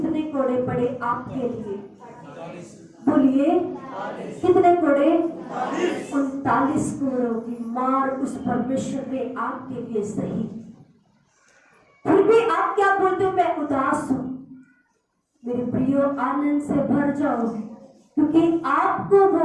कोड़े पड़े आपके लिए? बोलिए, कितने कोड़े? 39 कोड़ों की मार उस परमेश्वर ने आपके लिए सही। फिर भी आप क्या बोलते हो? मैं उदास हूं। मेरे प्रियो, आनंद से भर जाओ, क्योंकि आपको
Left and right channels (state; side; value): identical; both; correlation 1.00